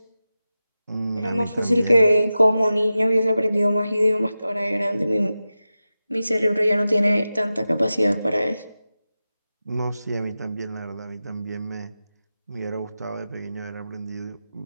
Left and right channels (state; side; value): inverted; both; correlation -0.93